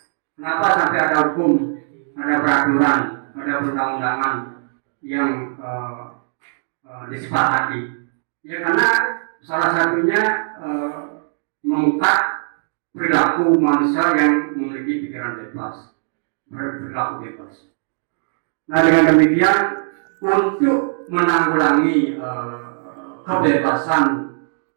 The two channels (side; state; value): left; silent; digital silence